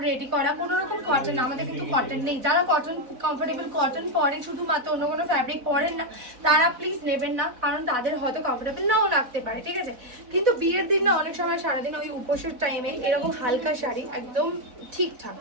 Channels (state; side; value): late; left; 4.1 ms